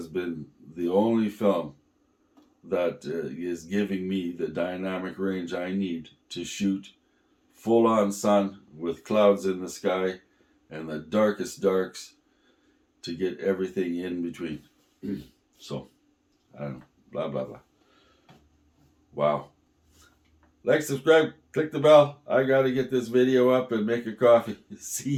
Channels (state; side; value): identical; both; correlation 1.00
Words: been the only film that is giving me the dynamic range I need to shoot full on sun with clouds in the sky and the darkest darks to get everything in between. So, I don't know, blah, blah, blah. Wow. Like, subscribe, click the bell. I gotta get this video up and make a coffee. See